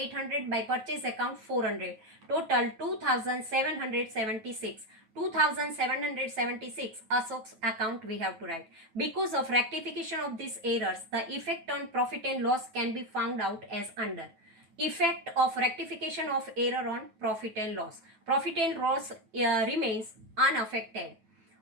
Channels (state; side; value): late; left; 9.3 ms